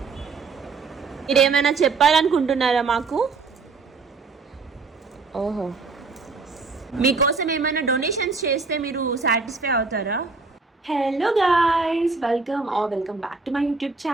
మీరేమైనా చెప్పాలనుకుంటున్నారా మాకు? ఓహో, మీకోసం ఏమైనా డొనేషన్స్ చేస్తే మీరు సాటిస్ఫై అవుతారా? Hello guys, welcome back to my YouTube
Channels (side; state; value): left; quieter; 4.4 dB